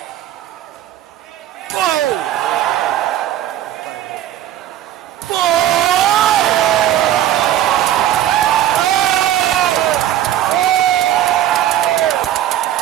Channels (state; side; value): quieter; left; 12.1 dB